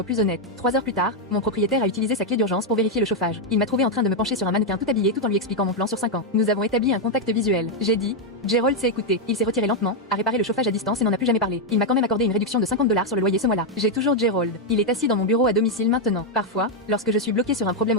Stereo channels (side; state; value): both; normal; correlation 0.01